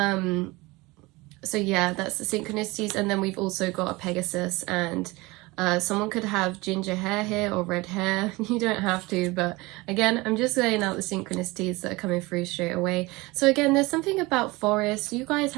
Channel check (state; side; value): quieter; left; 22.7 dB